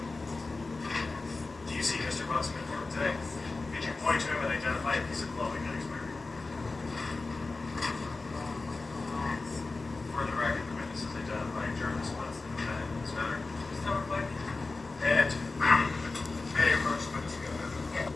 Do you see Mr. Bunson in court today? Did you point to him and identify a piece of clothing that he's wearing? For the record, the witness is identifying Jarvis Bunson, the defendant in this matter. And may I approach the witness again?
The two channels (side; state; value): right; quieter; 3.6 dB